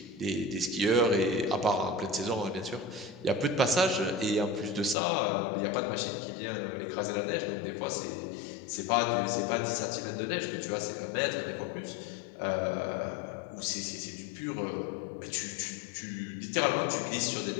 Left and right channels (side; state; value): right; drops out; at 5.0 s